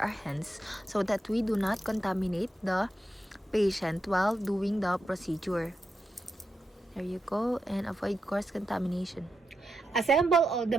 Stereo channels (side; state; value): both; normal; correlation 0.86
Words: hands so that we do not contaminate the patient while doing the procedure. There you go, and avoid cross contamination. Assemble all the